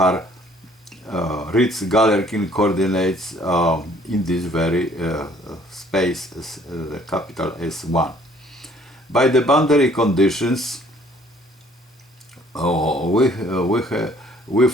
Ritz-Galerkin coordinates in this very space, the capital S1. By the boundary conditions, we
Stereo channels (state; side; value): normal; both; correlation 0.59